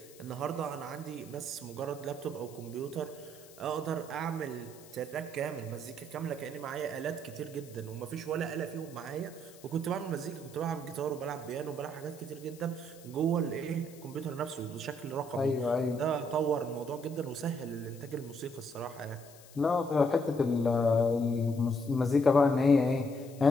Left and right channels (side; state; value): left; noise; hiss, 22 dB below the sound